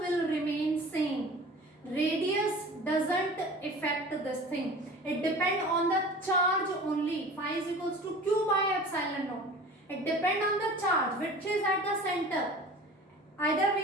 remain same. Radius doesn't affect this thing. It depends on the charge only. Phi is equals to Q by epsilon naught. It depends on the charge which is at the center. Either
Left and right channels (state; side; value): normal; both; correlation 0.40